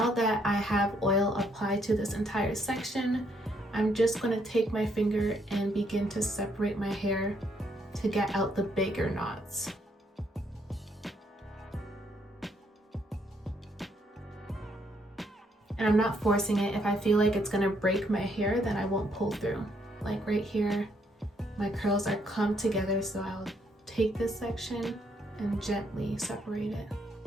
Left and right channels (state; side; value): normal; both; correlation 0.71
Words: that I have oil applied to this entire section, I'm just gonna take my finger and begin to separate my hair to get out the bigger knots. And I'm not forcing it. If I feel like it's gonna break my hair, then I won't pull through. Like right here, my curls are clumped together, so I'll take this section and gently separate it.